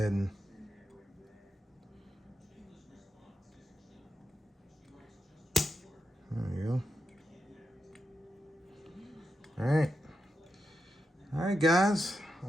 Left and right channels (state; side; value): normal; both; correlation 0.87